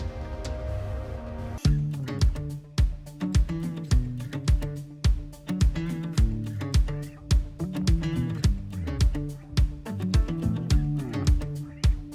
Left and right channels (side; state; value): both; identical; correlation 1.00